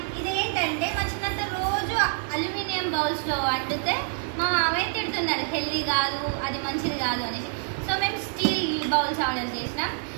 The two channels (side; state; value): left; silent; 60 dB below the other